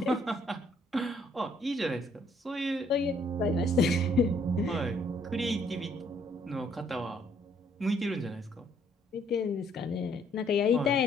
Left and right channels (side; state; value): both; normal; correlation 0.66